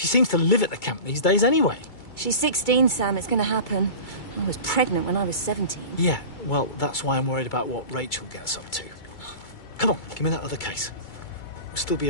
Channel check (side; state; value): right; late; 2.3 ms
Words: seems to live at the camp these days anyway. She's 16, Sam. It's going to happen. I was pregnant when I was 17. Yeah, well, that's why I'm worried about what Rachel gets up to. Come on, give me that other case. We'll still be